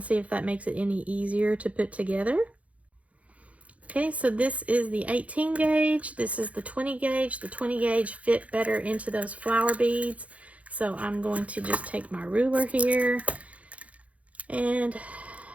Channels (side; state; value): left; late; 0.066 ms